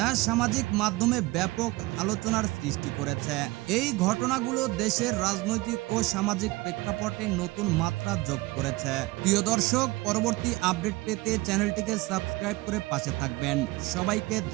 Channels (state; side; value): quieter; left; 21.1 dB